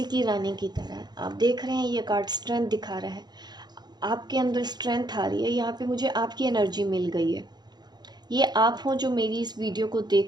की रानी की तरह। आप देख रहे हैं ये कार्ड स्ट्रेंथ दिखा रहा है, आपके अंदर स्ट्रेंथ आ रही है। यहाँ पे मुझे आपकी एनर्जी मिल गई है। ये आप हो जो मेरी इस वीडियो को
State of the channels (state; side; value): late; left; 0.20 ms